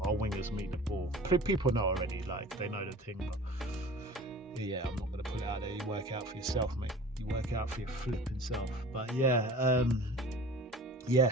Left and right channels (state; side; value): normal; both; correlation 0.42